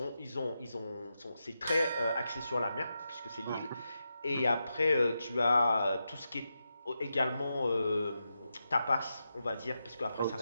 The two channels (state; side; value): inverted; both; correlation -0.87